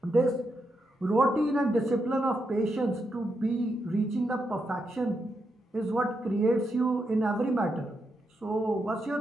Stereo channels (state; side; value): normal; both; correlation 0.83